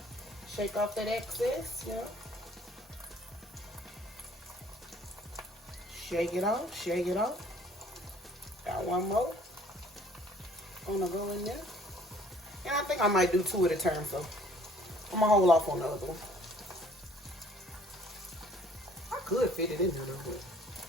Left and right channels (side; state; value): both; normal; correlation 0.57